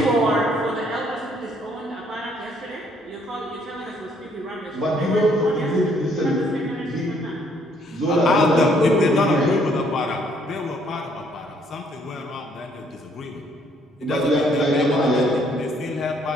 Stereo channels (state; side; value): normal; both; correlation 0.66